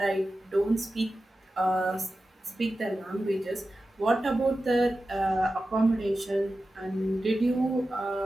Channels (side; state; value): both; normal; correlation 0.93